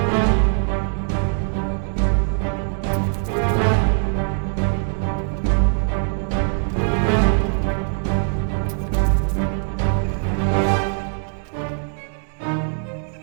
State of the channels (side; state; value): left; silent; 57 dB below the other